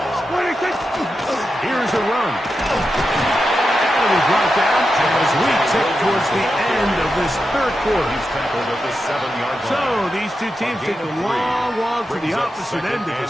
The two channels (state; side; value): normal; both; correlation 0.89